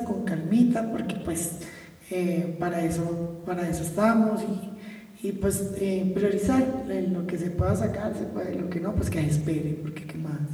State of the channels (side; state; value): both; identical; correlation 1.00